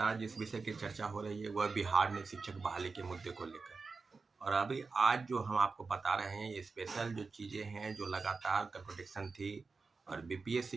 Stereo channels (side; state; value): left; quieter; 4.4 dB